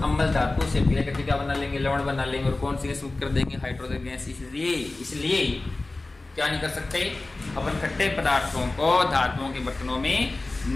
अम्ल धातु से विलय करके क्या बना लेंगे, लवण बना लेंगे, और कौन सी गैस मुक्त कर देंगे, हाइड्रोजन गैस। इसलिए क्या नहीं कर सकते, अपन खट्टे पदार्थों को धातुओं के बर्तनों में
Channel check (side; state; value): right; quieter; 3.1 dB